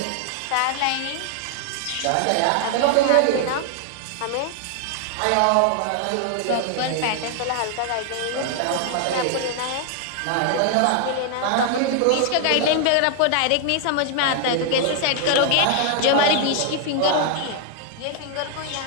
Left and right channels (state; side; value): different; both; correlation 0.00